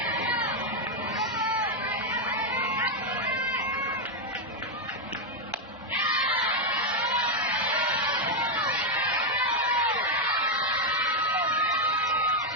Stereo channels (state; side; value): normal; both; correlation 0.02